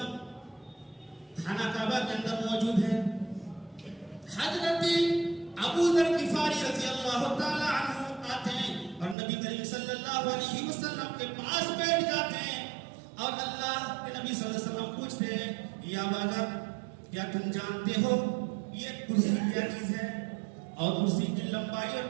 خانہ کعبہ کے اندر موجود ہے. حضرت ابو ذر غفاری رضی اللہ تعالی عنہ آتے ہیں اور نبی کریم صلی اللہ علیہ وسلم کے پاس بیٹھ جاتے ہیں اور اللہ کے نبی صلی اللہ علیہ وسلم پوچھتے ہیں، یا ابا ذر کیا تم جانتے ہو یہ کرسی کیا چیز ہے اور کرسی کی لمبائی اور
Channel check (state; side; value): drops out; left; at 9.2 s